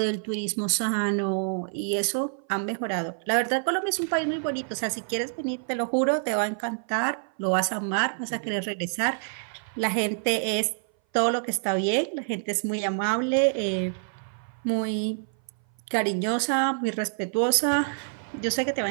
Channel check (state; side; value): silent; left; 59 dB below the other